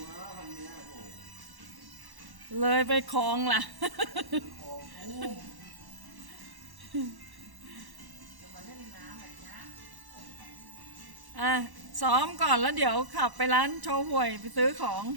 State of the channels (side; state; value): left; late; 1.1 ms